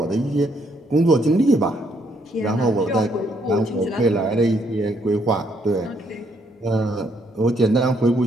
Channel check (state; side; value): normal; both; correlation 0.71